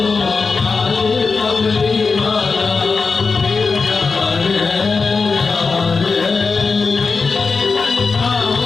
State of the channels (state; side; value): quieter; right; 4.6 dB